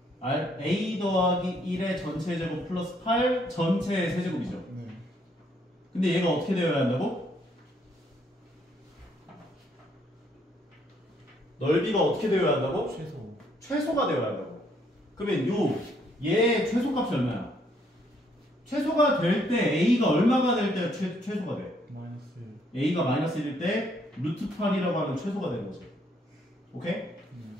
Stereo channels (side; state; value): both; normal; correlation 0.69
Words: A 더하기 1의 전체 제곱 플러스 8 전체 세제곱이죠. 네. 근데 얘가 어떻게 되어야 한다고? 넓이가 어떻게 되어야 한다고? 최소가 되어야 한다고. 그러면 얘의 최소값이 얼마야? 최소가 될 때 A가 얼마가 될 때 최소가 돼? 마이너스 A가 마이너스 1일 때 루트 8이라고 하면 최소가 되는 거지. 오케이?